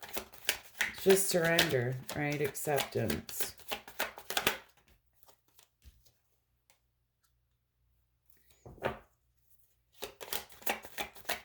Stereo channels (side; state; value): both; identical; correlation 1.00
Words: just surrender, right? Acceptance.